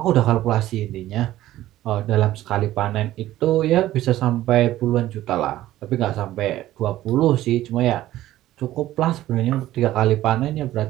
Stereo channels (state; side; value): quieter; left; 14.6 dB